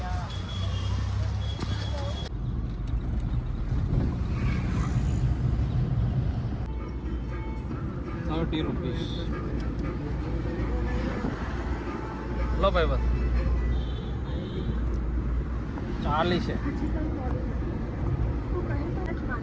30 રૂપીસ લો ભાઈ બસ 40 છે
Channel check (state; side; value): identical; both; correlation 1.00